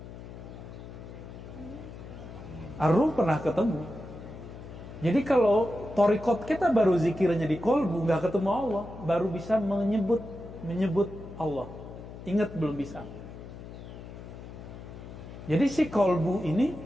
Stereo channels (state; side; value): noise; left; hum, 13 dB below the sound